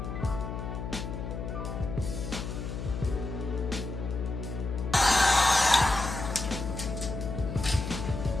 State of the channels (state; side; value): noise; left; hum, 6 dB below the sound